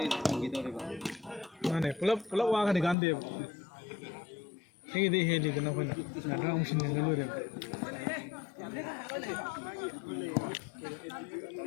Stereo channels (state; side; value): drops out; right; at 3.0 s